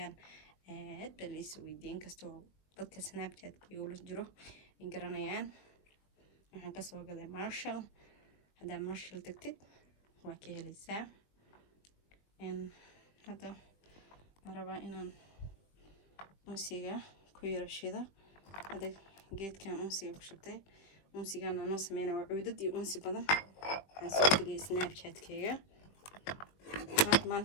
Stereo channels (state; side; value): late; right; 21 ms